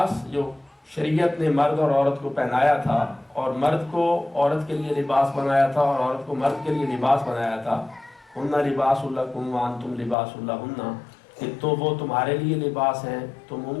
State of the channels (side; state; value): right; drops out; at 10.2 s